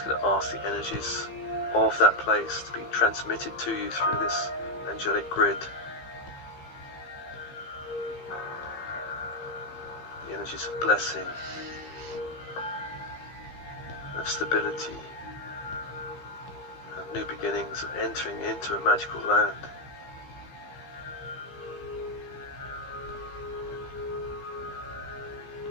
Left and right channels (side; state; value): right; late; 15 ms